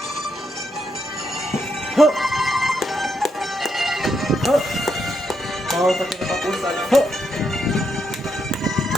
Bawal sa kinatapusan.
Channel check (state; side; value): normal; both; correlation 0.79